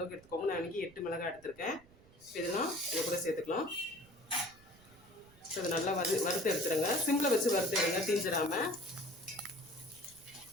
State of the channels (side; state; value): right; noise; rumble, 25 dB below the sound